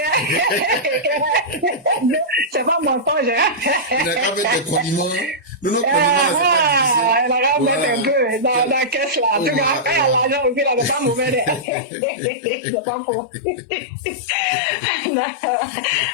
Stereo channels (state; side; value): drops out; right; at 11.7 s